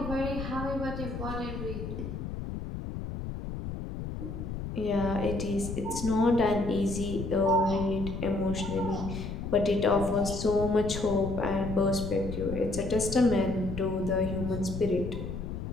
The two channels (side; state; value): left; noise; rumble, 6 dB below the sound